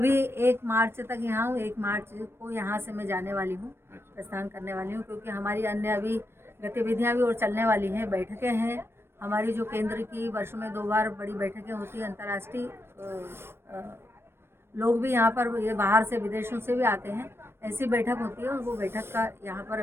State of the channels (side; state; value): left; late; 0.12 ms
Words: 1 मार्च तक यहाँ हूँ। 1 मार्च को यहाँ से मैं जाने वाली हूँ, प्रस्थान करने वाली हूँ, क्योंकि हमारी अन्य अभी गतिविधियाँ भी और चलने वाली हैं। बैठकें हैं हमारी, जो केंद्र की वर्ष में 2 बार बड़ी बैठकें होती हैं। अंतर्राष्ट्रीय लोग भी यहाँ पर, ये बाहर से विदेशों से भी आते हैं, ऐसी बैठक होती है और वो बैठक का यहाँ पर